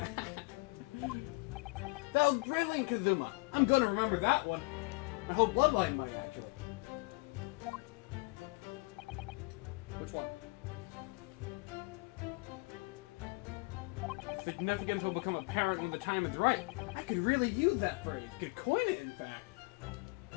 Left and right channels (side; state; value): right; quieter; 28.1 dB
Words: That was brilliant, Kazuma. I'm gonna remember that one. My whole bloodline might actually. Which one? Significance will become apparent when the time is right. I could really use that phrase. Could coin it, in fact.